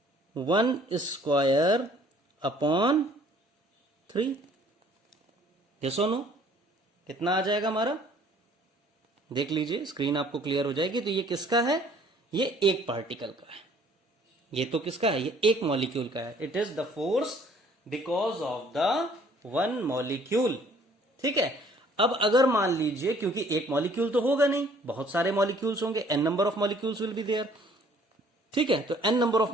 u1 square upon 3। Yes और नो? कितना आ जाएगा हमारा? देख लीजिए, स्क्रीन आपको क्लियर हो जाएगी। तो ये किसका है? ये एक पार्टिकल का है। ये तो किसका है? ये एक मॉलिक्यूल का है। It is the force because of the one molecule. ठीक है, अब अगर मान लीजिए, क्योंकि एक मॉलिक्यूल तो होगा नहीं, बहुत सारे मॉलिक्यूल्स होंगे, n number of molecules will be there. ठीक है, तो n नंबर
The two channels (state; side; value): normal; both; correlation 0.57